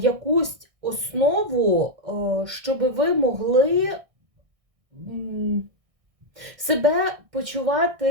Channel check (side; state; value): left; late; 1.6 ms